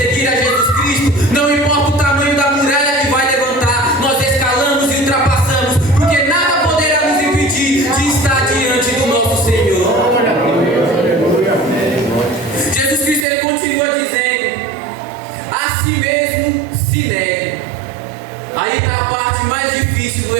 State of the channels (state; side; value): drops out; left; at 13.2 s